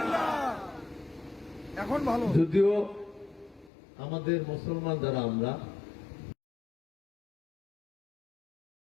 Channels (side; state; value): right; drops out; at 3.7 s